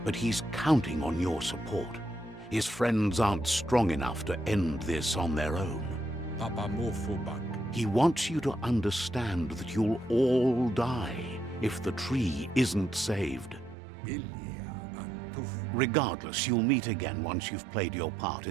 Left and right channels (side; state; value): left; drops out; at 13.8 s